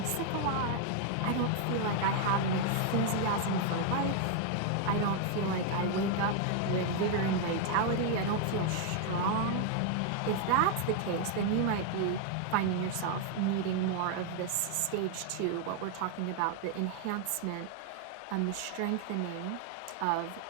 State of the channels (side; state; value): both; different; correlation 0.00